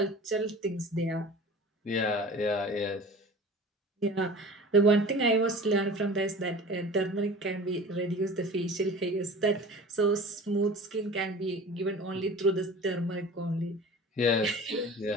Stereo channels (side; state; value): both; normal; correlation 0.40